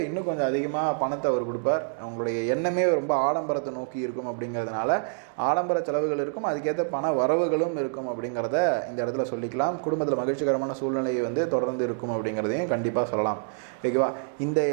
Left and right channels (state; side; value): silent; left; digital silence